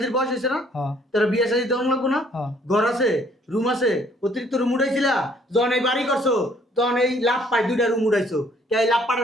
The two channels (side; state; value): both; normal; correlation 0.62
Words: বয়স হয়েছে না, তোর বিয়ে শাদী তেমন লাগবো না? ঘর আছে, রুম আছে, অতিরিক্ত রুম উঠাইছিলা। যখন এই বাড়ি করছো তখন এই লাভ পাই 2টা রুম উঠাইছো। এই লাভ